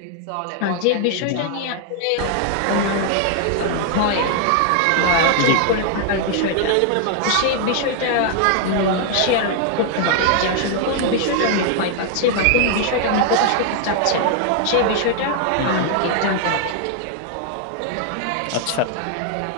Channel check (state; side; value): different; both; correlation 0.00